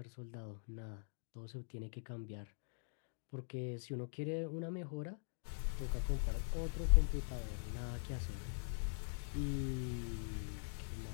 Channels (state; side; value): silent; right; digital silence